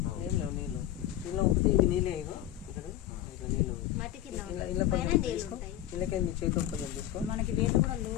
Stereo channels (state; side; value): quieter; right; 13.0 dB